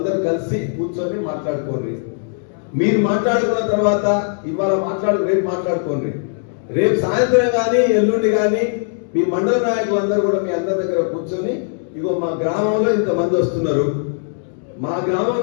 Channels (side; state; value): right; silent; digital silence